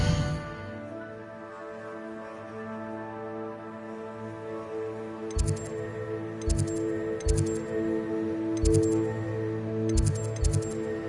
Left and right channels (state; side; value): identical; both; correlation 1.00